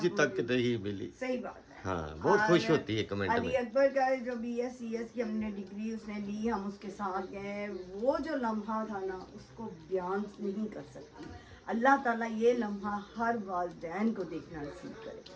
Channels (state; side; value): identical; both; correlation 1.00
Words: मैं तक बोलूं। नहीं मिली। सही बात है। हाँ, बहुत और खुश होती है कमेंट अली में। अकबर का जो BScs की हमने डिग्री उसने ली, हम उसके साथ गए, वो जो लम्हा था ना, उसको बयान नहीं कर सकती। अल्लाह ताला ये लम्हा हर वालिदैन को देखना नसीब